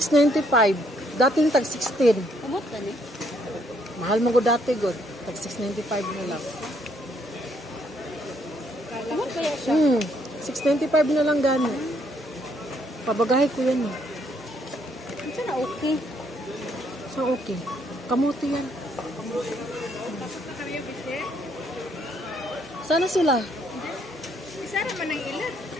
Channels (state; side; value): normal; both; correlation 0.70